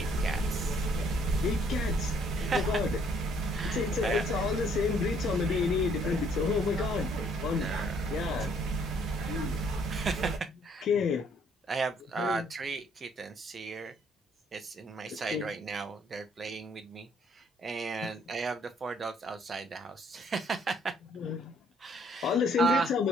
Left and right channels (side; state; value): both; normal; correlation 0.64